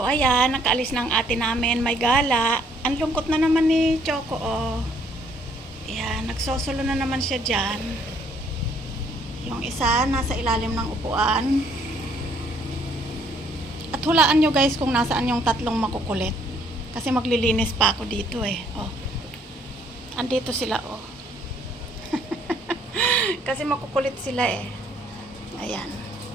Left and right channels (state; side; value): normal; both; correlation 0.65